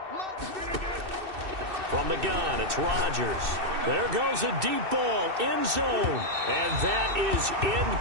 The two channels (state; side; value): late; left; 2.6 ms